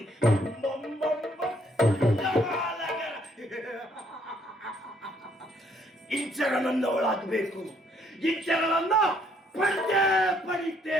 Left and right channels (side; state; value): both; normal; correlation 0.67